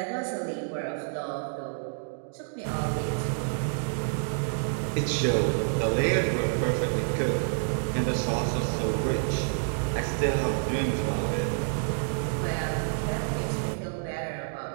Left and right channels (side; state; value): left; silent; digital silence